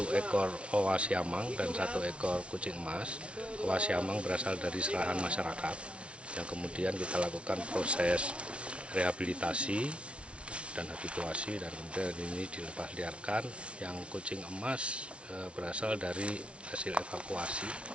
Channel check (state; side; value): late; left; 0.060 ms